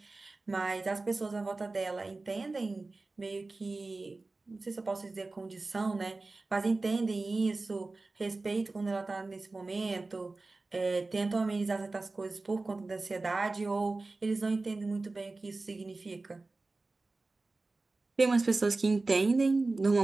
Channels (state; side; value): quieter; left; 3.4 dB